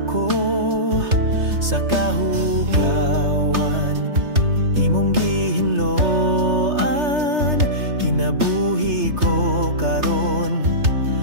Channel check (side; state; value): left; late; 3.3 ms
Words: sa kahugawan, imong gihinloan, kinabuhi ko karon,